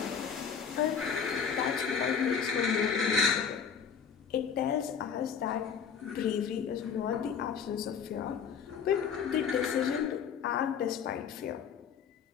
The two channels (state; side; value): quieter; right; 6.9 dB